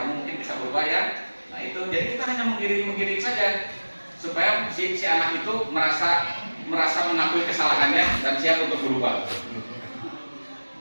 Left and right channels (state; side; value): inverted; both; correlation -1.00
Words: mungkin bisa berubah ya. Nah, itu jadi kita hanya mengiring saja supaya si anak itu merasa mengakui kesalahannya dan siap untuk berubah.